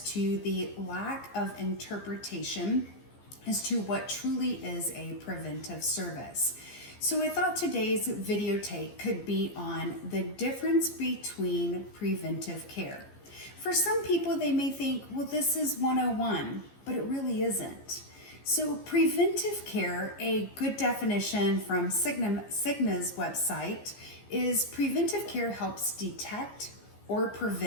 to the lack of interpretation as to what truly is a preventive service. So I thought today's video take could be on the difference between preventive care. For some people, they may think, well, this is 101, but it really isn't. So preventive care, a good definition from Cigna's website, is preventive care helps detect or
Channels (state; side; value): late; right; 15 ms